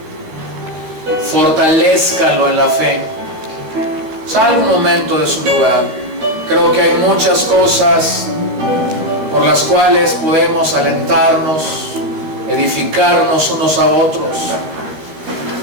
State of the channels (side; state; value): left; late; 13 ms